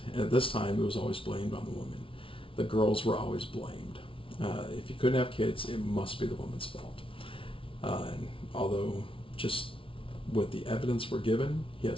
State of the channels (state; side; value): late; right; 0.25 ms